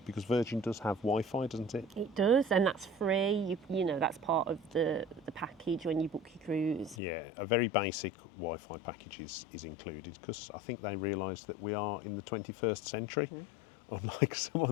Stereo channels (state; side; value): drops out; right; at 7.0 s